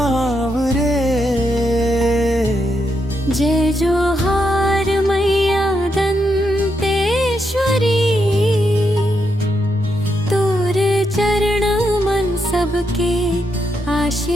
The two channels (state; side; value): normal; both; correlation 0.81